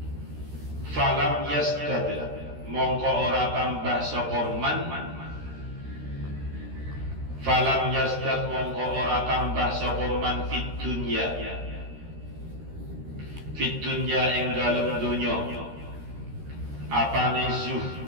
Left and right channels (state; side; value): late; left; 13 ms